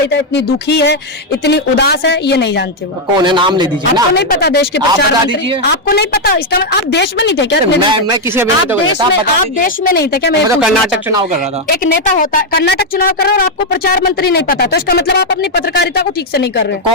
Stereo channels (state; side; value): normal; both; correlation 0.01